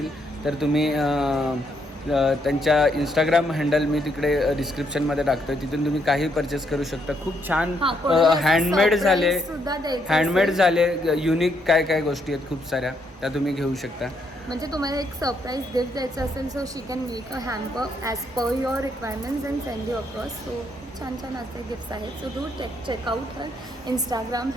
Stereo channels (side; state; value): both; normal; correlation 0.74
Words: तर तुम्ही त्यांच्या इंस्टाग्राम हँडल मी तिकडे डिस्क्रिप्शनमध्ये टाकतो, तिथून तुम्ही काही परचेस करू शकता. खूप छान हँडमेड झाले युनिक काय काय गोष्टी आहेत खूप साऱ्या, त्या तुम्ही घेऊ शकता. म्हणजे तुम्हाला एक सरप्राईज गिफ्ट द्यायचं असेल, so she can make a hamper as per your requirements and send you across. So छान छान असे गिफ्ट्स आहेत. So do check out her Instagram